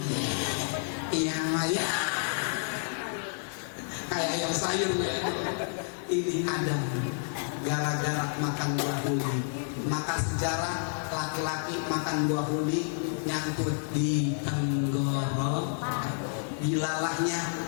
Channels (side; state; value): right; silent; digital silence